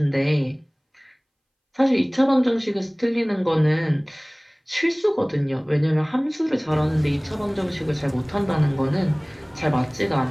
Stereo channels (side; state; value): both; identical; correlation 1.00